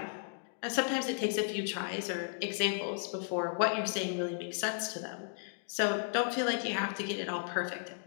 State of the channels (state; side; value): silent; right; digital silence